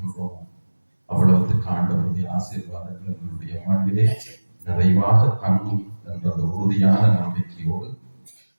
அவ்வளவுக்கு ஆண்டவருடைய ஆசீர்வாதங்கள் எங்களுடைய வாழ்விலே நிறைவாக தங்கும் என்ற உறுதியான நம்பிக்கையோடு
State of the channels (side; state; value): both; inverted; correlation -1.00